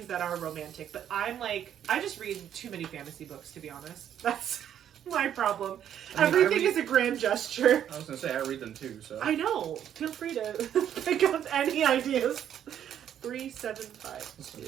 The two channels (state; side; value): quieter; left; 9.9 dB